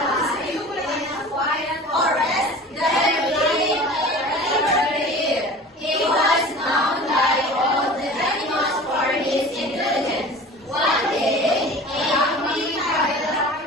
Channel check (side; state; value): both; normal; correlation 0.40